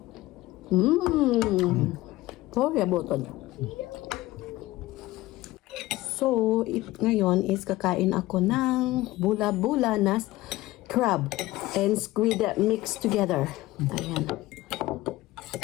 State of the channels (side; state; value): right; quieter; 18.0 dB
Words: Sorry about it. So, ngayon is kakain ako ng bula-bula na crab and squid mixed together. Ayan.